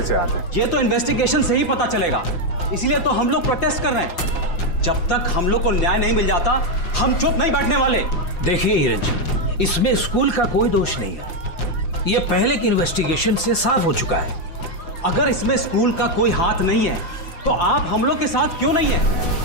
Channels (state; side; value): late; right; 5.8 ms